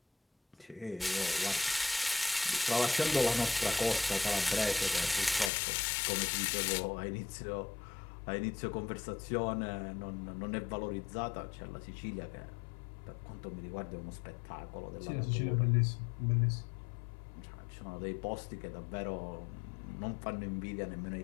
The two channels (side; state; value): right; drops out; at 5.5 s